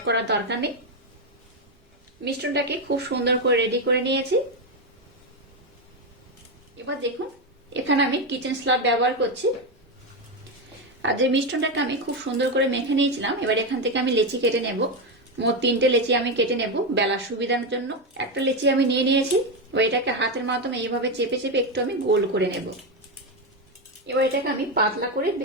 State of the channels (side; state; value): both; normal; correlation 0.09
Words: করার দরকার নেই। মিশ্রণটাকে খুব সুন্দর করে রেডি করে নিয়েছি। এবার দেখুন এখানে আমি কিচেন স্ল্যাব ব্যবহার করছি। আর যে মিশ্রণটাকে আমি খুব সুন্দর করে মেখে নিয়েছিলাম, এবার এখান থেকে আমি লেচি কেটে নেব। মোট 3টে লেচি আমি কেটে নেব বেলার সুবিধার জন্য। একটা লেচি আমি নিয়ে নিয়েছি, এবার এটাকে হাতের মাধ্যমে এইভাবে চেপে চেপে একটু আমি গোল করে নেব। এবার এটাকে আমি পাতলা করে